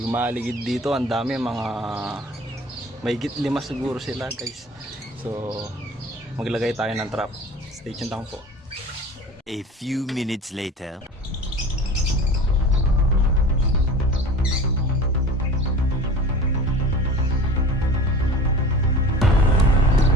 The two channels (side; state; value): both; normal; correlation 0.39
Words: maligid dito, ang dami, mga may higit 5 siguro sila guys. So maglagay tayo ng trap. Stay tuned lang po. A few minutes later.